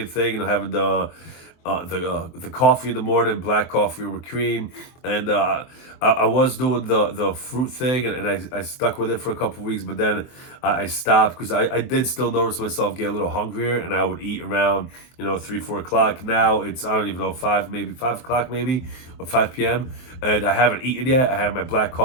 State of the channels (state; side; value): late; right; 23 ms